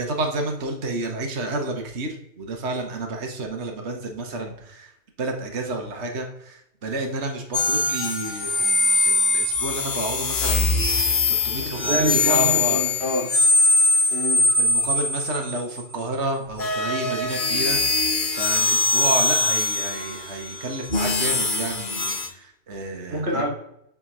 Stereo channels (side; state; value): left; late; 2.4 ms